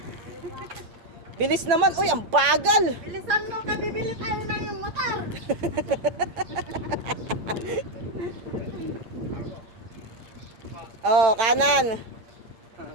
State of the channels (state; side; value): late; left; 8.9 ms